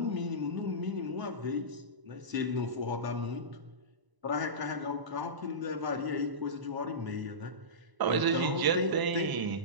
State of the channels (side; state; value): left; late; 1.0 ms